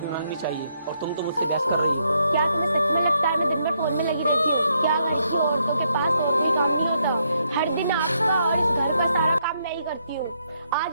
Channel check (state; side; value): inverted; both; correlation -0.75